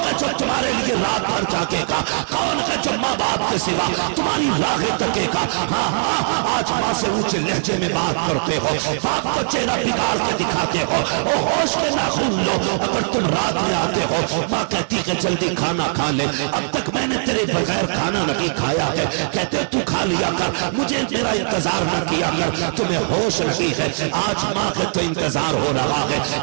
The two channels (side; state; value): left; silent; digital silence